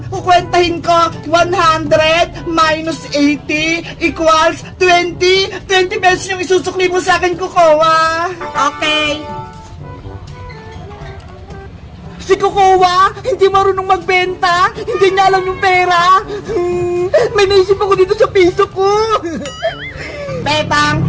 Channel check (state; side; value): identical; both; correlation 1.00